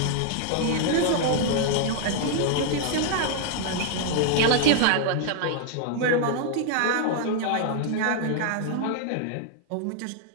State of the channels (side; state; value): both; different; correlation 0.00